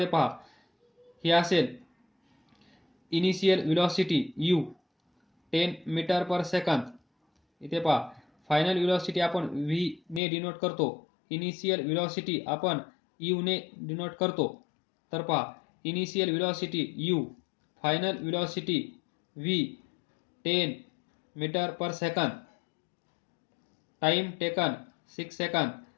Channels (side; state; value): right; drops out; at 10.2 s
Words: पहा, ही असेल initial velocity u 10 metre per second. इथे पहा, फायनल व्हेलॉसिटी आपण v ने डिनोट करतो, इनिशियल व्हेलॉसिटी आपण u ने डिनोट करतो. तर पहा, initial velocity u, final velocity v, 10 metre per second. Time taken 6 second.